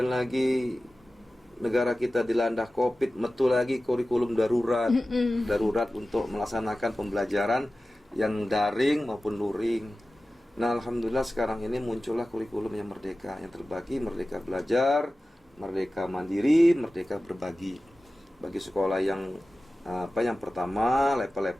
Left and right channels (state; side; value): normal; both; correlation 0.96